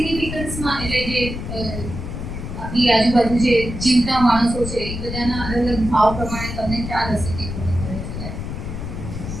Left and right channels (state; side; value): noise; left; rumble, 6 dB below the sound